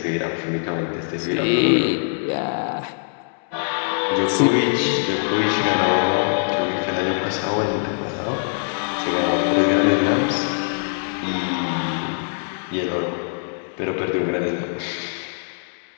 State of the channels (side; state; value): right; silent; 64 dB below the other